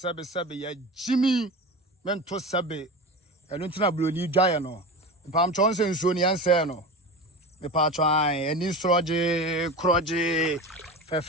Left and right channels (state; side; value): normal; both; correlation 0.28